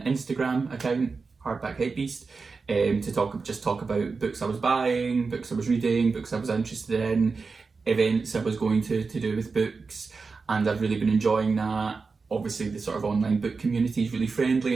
Instagram account, Hardback Hypebeast, to talk about books I was buying, books I was reading, books I was interested in, events I was going to do with books, and I've really been enjoying that. Obviously the sort of online book community is really friendly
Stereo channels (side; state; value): left; quieter; 4.5 dB